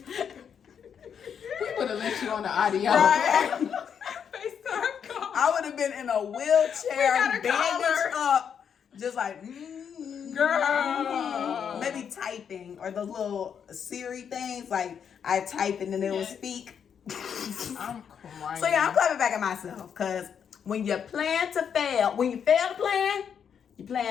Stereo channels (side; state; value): right; quieter; 7.6 dB